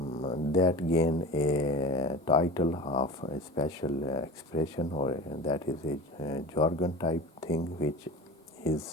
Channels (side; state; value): both; normal; correlation 0.34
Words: that gained a title of a special expression, or that is a jargon type thing, which